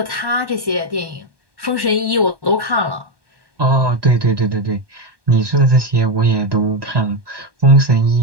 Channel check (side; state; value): left; late; 1.2 ms